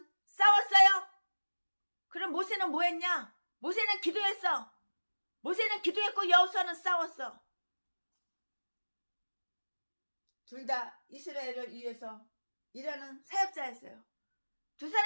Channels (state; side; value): inverted; both; correlation -1.00